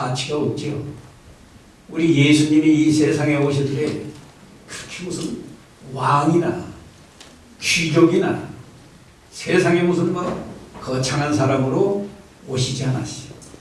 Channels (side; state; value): both; identical; correlation 1.00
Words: 없지요. 우리 예수님이 이 세상에 오실 때 그렇게 무슨 왕이나 귀족이나 세상에 무슨 거창한 사람으로 오시지 않았어요.